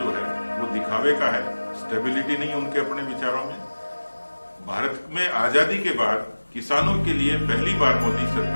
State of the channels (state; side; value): inverted; both; correlation -1.00